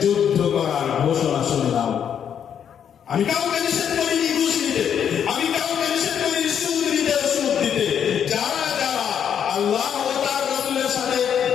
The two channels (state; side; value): quieter; right; 8.5 dB